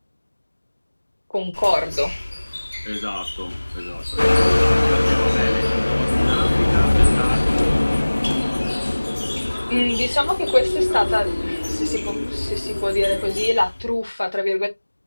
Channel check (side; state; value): both; inverted; correlation -1.00